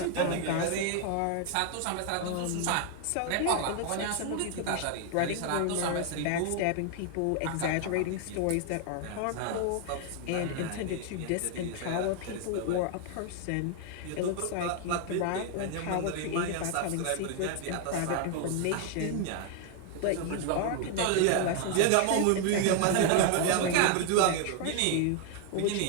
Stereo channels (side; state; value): both; different; correlation 0.00